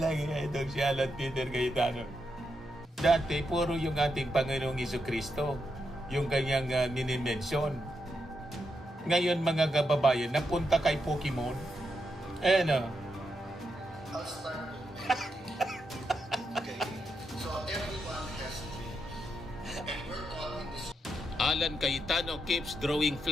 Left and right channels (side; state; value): both; normal; correlation 0.83